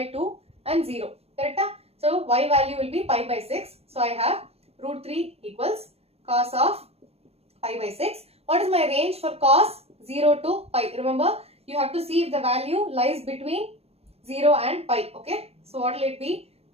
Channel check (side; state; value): left; late; 0.29 ms